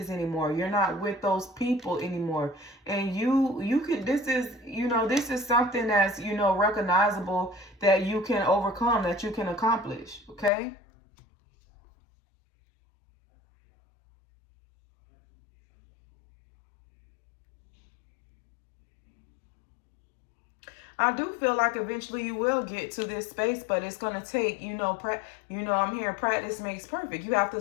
anymore. You're not with those people anymore. And you could, this is something that's, recognizable, that you can overcome, that you can accomplish. Okay? I do feel like eventually you will get to this space, but it's going to take, I'm hearing practice makes perfect. You have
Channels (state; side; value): drops out; right; at 10.5 s